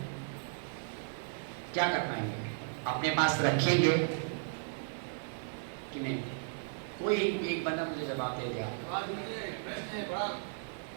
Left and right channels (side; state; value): left; silent; digital silence